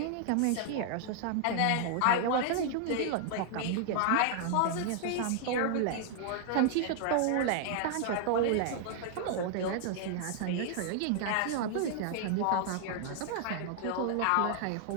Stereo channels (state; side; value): different; both; correlation 0.00